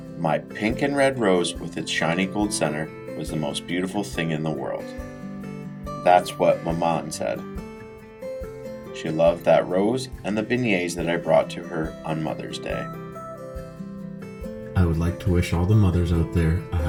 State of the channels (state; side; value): identical; both; correlation 1.00